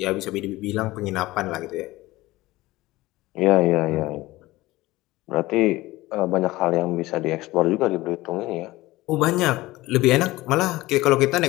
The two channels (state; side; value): quieter; right; 18.8 dB